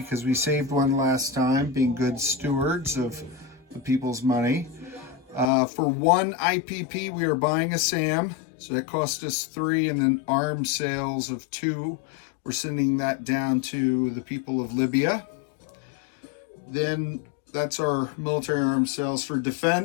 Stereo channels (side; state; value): right; drops out; at 5.5 s